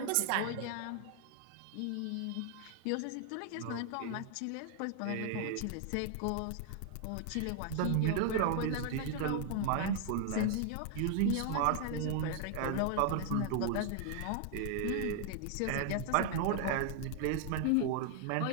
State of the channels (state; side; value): different; both; correlation 0.00